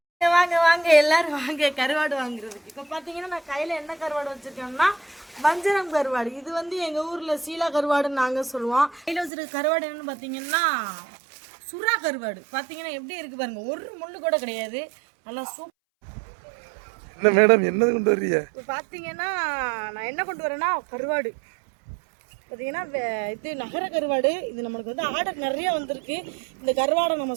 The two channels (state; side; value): drops out; left; at 9.3 s